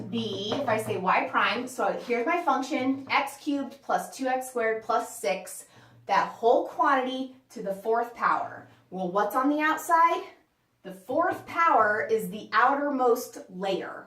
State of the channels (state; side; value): identical; both; correlation 1.00